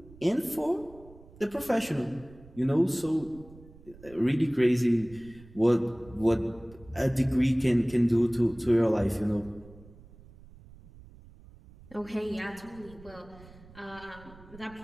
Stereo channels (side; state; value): right; noise; rumble, 21 dB below the sound